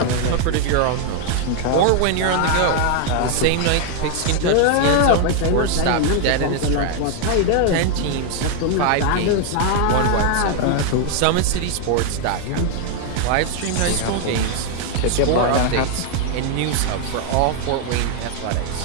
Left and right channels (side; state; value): both; different; correlation 0.00